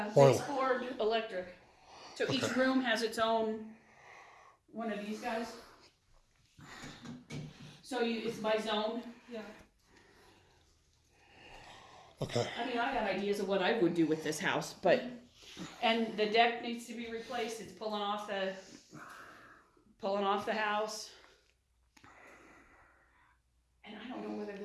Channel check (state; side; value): identical; both; correlation 1.00